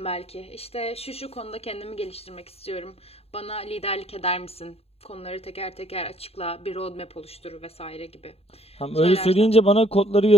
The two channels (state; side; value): late; right; 0.29 ms